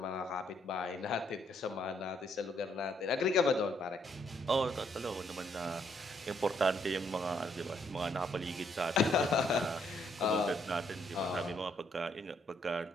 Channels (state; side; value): normal; both; correlation 0.71